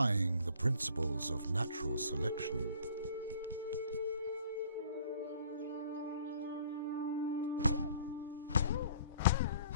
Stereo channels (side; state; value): both; inverted; correlation -0.55